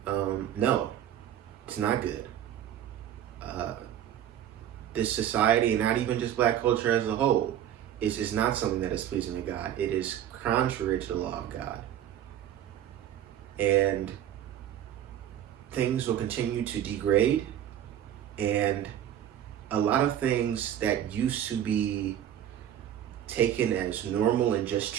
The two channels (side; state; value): left; quieter; 10.8 dB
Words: no, it's not good. This society, and not even just black culture as a whole, is not something that is pleasing to God. It is contrary to the law of God. And things will continue to degrade, and a lot of things that used to be taken as normal and just